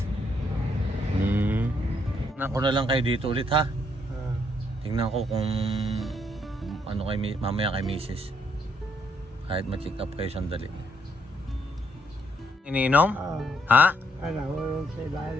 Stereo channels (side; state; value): both; normal; correlation 0.73